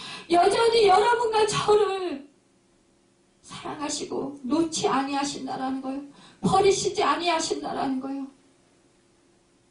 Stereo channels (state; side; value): identical; both; correlation 1.00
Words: 여전히 여러분과 저를 사랑하시고 놓지 아니하신다라는 거예요. 버리시지 아니하신다라는 거예요.